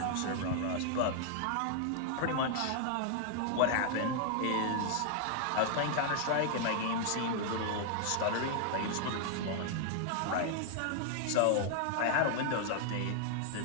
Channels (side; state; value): both; different; correlation 0.00